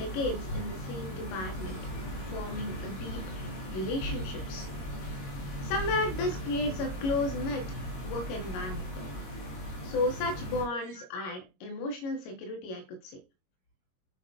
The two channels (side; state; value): right; late; 21 ms